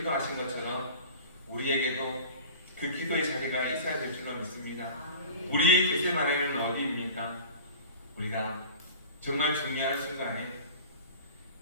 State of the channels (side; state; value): both; inverted; correlation -0.39